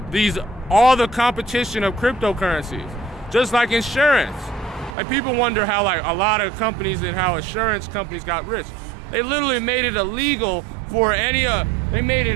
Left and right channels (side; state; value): left; drops out; at 5.0 s